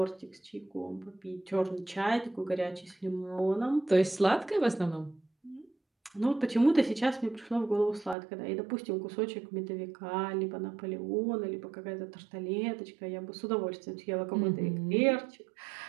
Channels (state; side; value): drops out; left; at 8.2 s